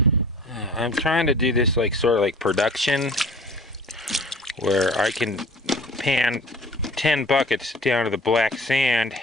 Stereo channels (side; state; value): both; normal; correlation 0.47